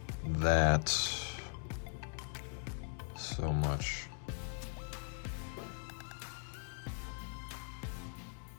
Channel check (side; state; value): right; silent; 51 dB below the other